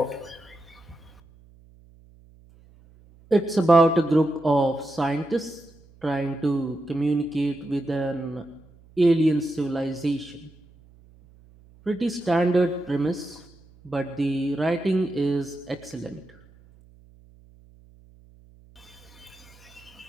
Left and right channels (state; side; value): noise; right; hum, 26 dB below the sound